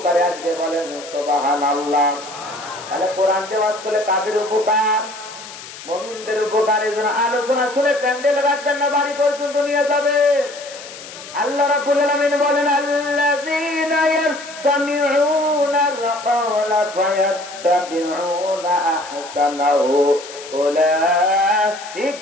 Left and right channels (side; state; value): left; noise; hiss, 15 dB below the sound